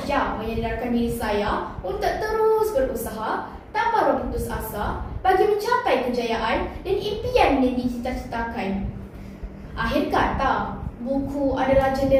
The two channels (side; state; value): both; identical; correlation 1.00